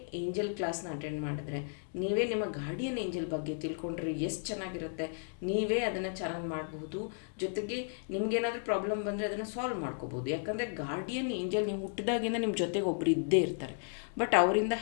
ಏಂಜಲ್ ಕ್ಲಾಸ್ನ ಅಟೆಂಡ್ ಮಾಡಿದ್ರೆ, ನೀವೇ ನಿಮ್ಮ ಗಾರ್ಡಿಯನ್ ಏಂಜಲ್ ಬಗ್ಗೆ ತಿಳ್ಕೊಂಡ್ರೆ ಎಷ್ಟು ಚೆನ್ನಾಗಿರುತ್ತೆ. ನೀವೇ ಅದನ್ನು ಚಾನಲ್ ಮಾಡಬಹುದು. ಜೊತೆಗೆ ನಿಮ್ಗೇನಾದರೂ ಪ್ರಾಬ್ಲಮ್ ಬಂದರೆ ಅದನ್ನು ಸಾಲ್ವ್ ಮಾಡ್ಕೋಬೋದು. ಯಾಕಂದರೆ ಗಾರ್ಡಿಯನ್ ಏಂಜಲ್ ನೀವು ಹುಟ್ಟಿದಾಗಿಂದ ನಿಮ್ಮ ಜೊತೆಗೆ ಒಬ್ಬರು ಇದ್ದೇ ಇರ್ತಾರೆ. ಬಟ್ ಅವರಿಂದ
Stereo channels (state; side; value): silent; right; digital silence